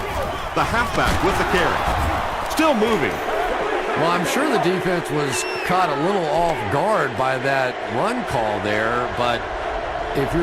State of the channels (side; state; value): both; identical; correlation 1.00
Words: The halfback with the carry. Still moving. Well, I'm sure the defense was caught a little off guard by that run call there, but if